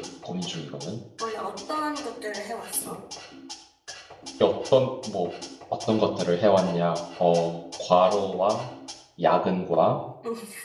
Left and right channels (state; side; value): identical; both; correlation 1.00